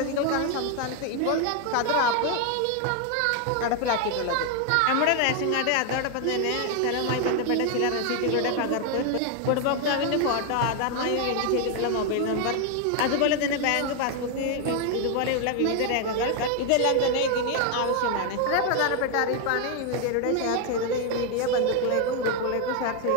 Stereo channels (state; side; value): different; both; correlation 0.01